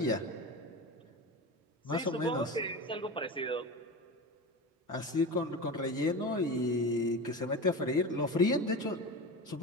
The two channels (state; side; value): normal; both; correlation 0.27